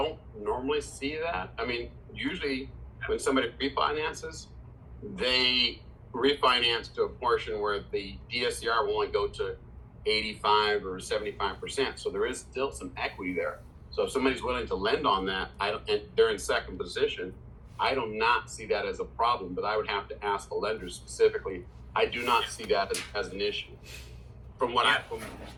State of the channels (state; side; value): identical; both; correlation 1.00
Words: normally see that. I mean, usually when somebody refinances, they refinance to a portion where the DSCR will only go to 85 or 75%. So there is still some equity there. So if somebody's willing to lend on that, and they're in second position, I do not see that as a problem, but I would have to ask the lender specifically. I do not see that as an issue from what I